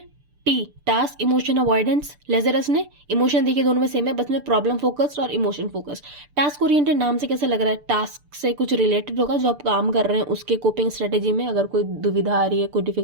टी टास्क इमोशन अवॉइडेंस, लेजरस ने इमोशन, देखिए दोनों में सेम है, बस में प्रॉब्लम फोकस्ड और इमोशन फोकस। टास्क ओरिएंटेड नाम से कैसे लग रहा है? टास्क से कुछ रिलेटेड होगा, जो आप काम कर रहे हैं उसके कोपिंग स्ट्रेटेजी में अगर कोई दुविधा आ रही है, कोई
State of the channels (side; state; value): left; late; 6.8 ms